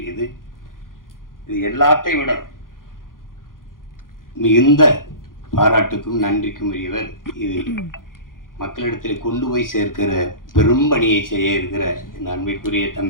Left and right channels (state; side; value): late; right; 0.90 ms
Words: இது எல்லாத்தையும் விட மிகுந்த பாராட்டுக்கும் நன்றிக்கும் உரியவர். இது மக்களிடத்தில் கொண்டு போய் சேர்க்கிற பெரும் பணியை செய்ய இருக்கிற என் அன்பிற்குரிய